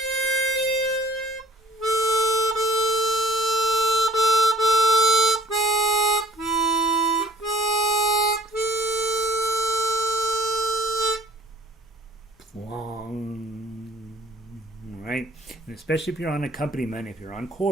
Long, right? And especially if you're on accompaniment, if you're on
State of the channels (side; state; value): both; normal; correlation 0.54